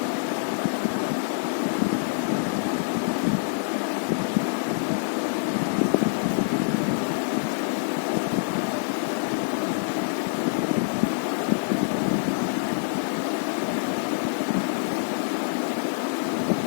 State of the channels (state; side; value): silent; right; digital silence